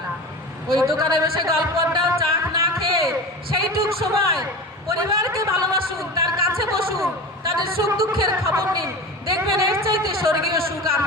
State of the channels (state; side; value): normal; both; correlation 0.30